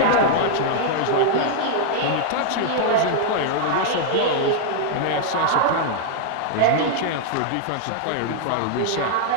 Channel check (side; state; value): both; different; correlation -0.01